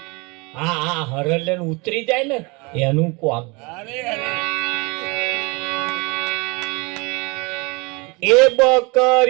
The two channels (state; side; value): quieter; left; 27.9 dB